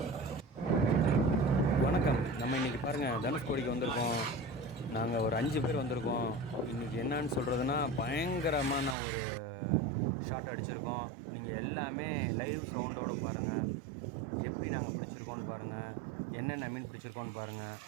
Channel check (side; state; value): left; drops out; at 9.0 s